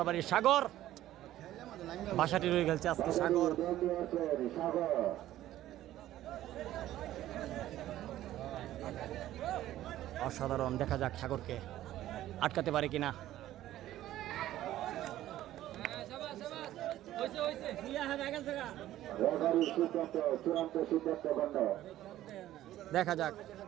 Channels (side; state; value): left; quieter; 13.8 dB